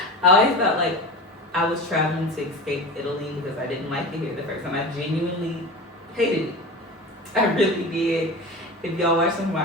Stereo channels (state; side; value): normal; both; correlation 0.30